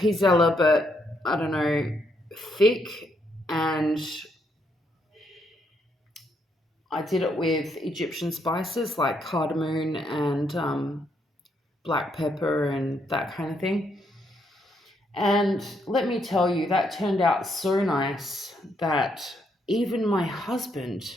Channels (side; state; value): both; normal; correlation 0.75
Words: but I don't know, thick. And I did it with Egyptian spices like cardamom and black pepper and that kind of thing. And let me tell you, that turned out so nice that even my husband